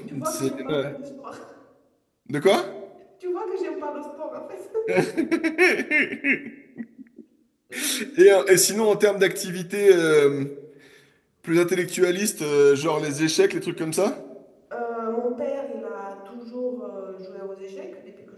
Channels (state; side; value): identical; both; correlation 1.00